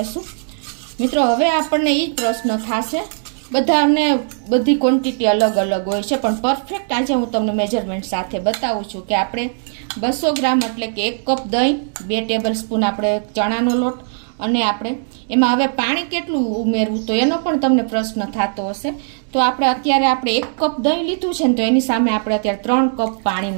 મિત્રો, હવે આપણને એ જ પ્રશ્ન થશે, બધાને બધી ક્વોન્ટિટી અલગ અલગ હોય છે, પણ પરફેક્ટ આજે હું તમને મેજરમેન્ટ સાથે બતાવું છું કે આપણે 200 ગ્રામ એટલે કે 1 કપ દહીં, 2 ટેબલ સ્પૂન આપણે ચણાનો લોટ, અને આપણે એમાં હવે પાણી કેટલું ઉમેરવું તો એનો પણ તમને પ્રશ્ન થતો હશે। તો અત્યારે આપણે 1 કપ દહીં લીધું છે ને તો એની સામે આપણે અત્યારે 3 કપ પાણી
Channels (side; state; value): left; silent; 66 dB below the other